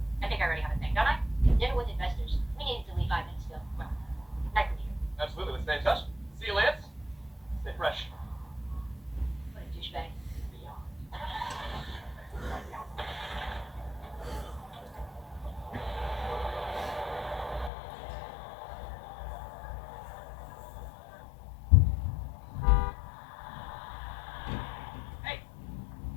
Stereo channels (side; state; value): right; drops out; at 17.7 s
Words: I think I already have a thing, don't I? Dinner with investors. We needed to leave 5 minutes ago. Well, nice to meet you. Absolutely. Let's stay in touch. See you, Lance. Stay fresh. What a douchebag.